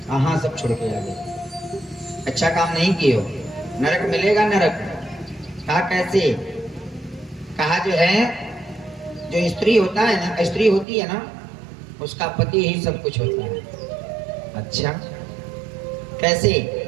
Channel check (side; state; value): left; drops out; at 10.9 s